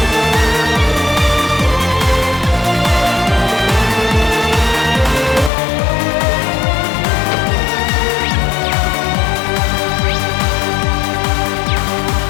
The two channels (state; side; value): drops out; right; at 5.5 s